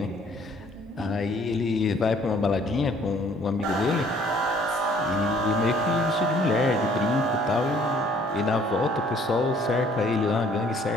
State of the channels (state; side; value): normal; both; correlation 0.59